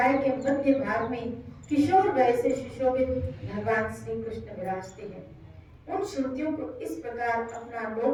के मध्य भाग में किशोर वय से सुशोभित भगवान श्री कृष्ण विराजते हैं। उन श्रुतियों को इस प्रकार अपना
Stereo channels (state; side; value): identical; both; correlation 1.00